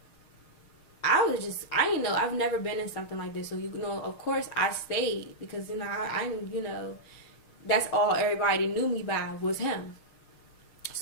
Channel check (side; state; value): right; late; 6.5 ms